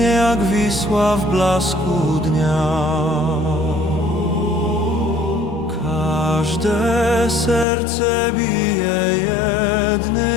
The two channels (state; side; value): drops out; right; at 7.7 s